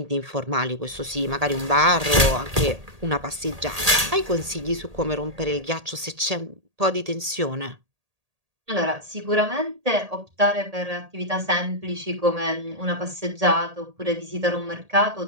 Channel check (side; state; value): left; late; 1.8 ms